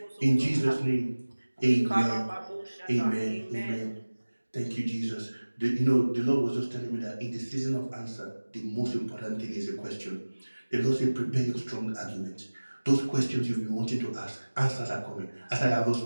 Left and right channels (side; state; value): both; inverted; correlation -1.00